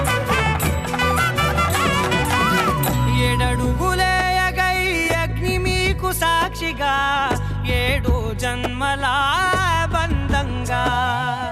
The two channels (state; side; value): identical; both; correlation 1.00